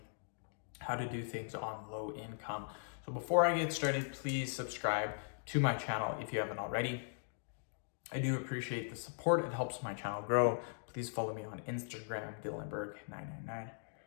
how to do things on low income. So before I get started, please subscribe to my channel if you haven't already. I do appreciate the support. It helps my channel grow. Please follow me on Instagram, Dylanberg999.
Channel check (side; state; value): right; silent; digital silence